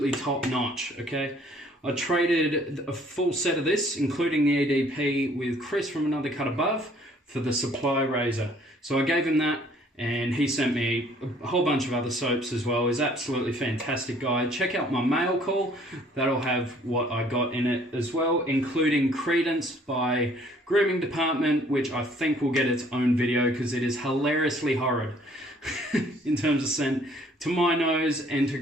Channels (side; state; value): both; normal; correlation 0.59